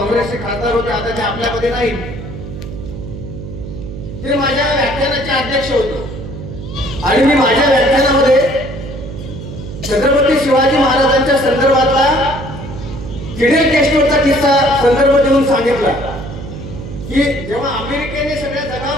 खासदार होते, आता ते आपल्यामध्ये नाही. ते माझ्या व्याख्यानाचे अध्यक्ष होते आणि मी माझ्या व्याख्यानामध्ये छत्रपती शिवाजी महाराजांच्या संदर्भातला फिडेल कॅस्ट्रोचा किस्सा संदर्भ देऊन सांगितला की जेव्हा अमेरिकेने सगळ्या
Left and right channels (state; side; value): noise; right; hum, 10 dB below the sound